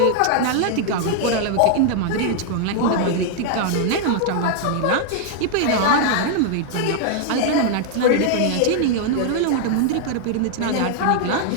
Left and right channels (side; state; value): both; different; correlation 0.00